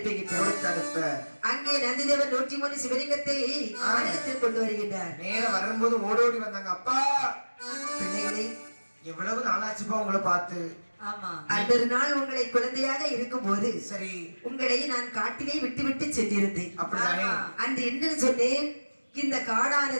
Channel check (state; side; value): inverted; both; correlation -1.00